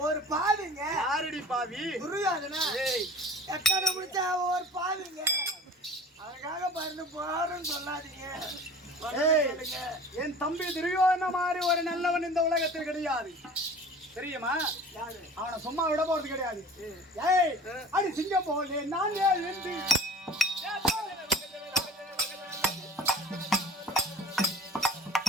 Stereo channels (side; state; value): both; normal; correlation 0.43